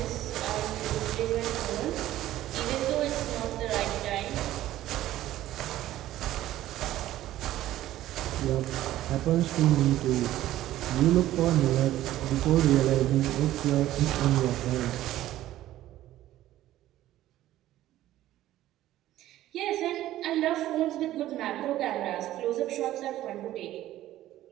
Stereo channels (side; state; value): left; quieter; 14.1 dB